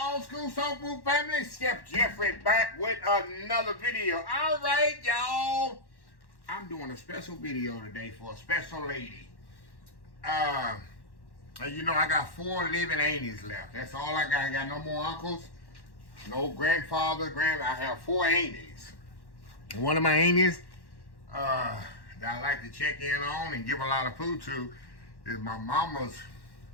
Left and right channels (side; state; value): right; late; 1.1 ms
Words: old school soul food family? Chef Jeffrey back with another video. All right, y'all. I'm doing a special video today for a special lady. And you know, I got 4 living aunties left. That's all I got. I got no more uncles, no grandfather, I have 4 aunties. And one of my aunties that I like to check in on and give a lot of food to is my mama's